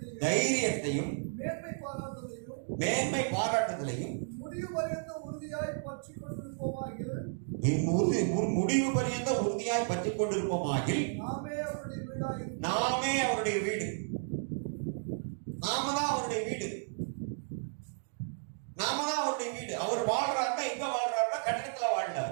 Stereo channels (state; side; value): silent; left; digital silence